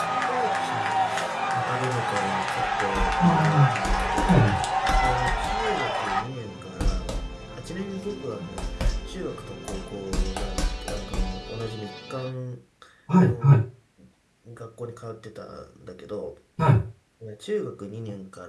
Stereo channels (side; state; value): both; identical; correlation 1.00